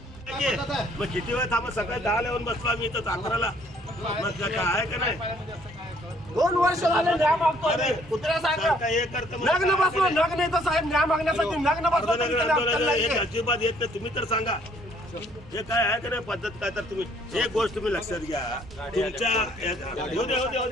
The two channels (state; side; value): normal; both; correlation 0.63